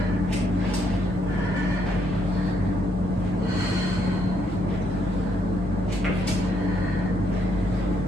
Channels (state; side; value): normal; both; correlation 0.73